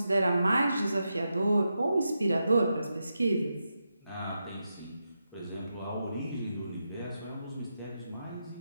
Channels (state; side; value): inverted; both; correlation -0.87